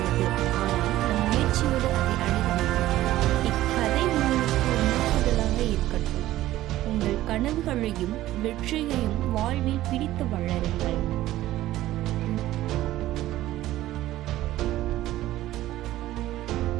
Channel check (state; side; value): quieter; left; 15.0 dB